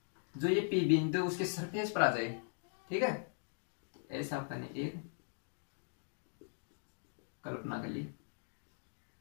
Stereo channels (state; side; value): silent; right; digital silence